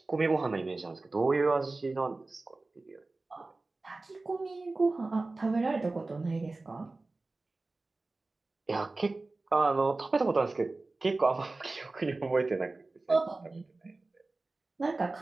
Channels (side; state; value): left; quieter; 3.3 dB